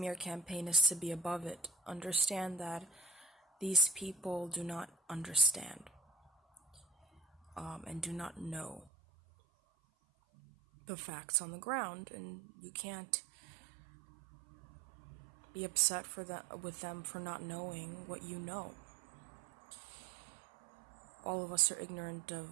campaign is to be above it. Understand that these people do not understand and do not know the facts on the ground, and you can't be upset with them for not knowing what you know. All of us are ignorant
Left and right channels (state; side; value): drops out; left; at 8.9 s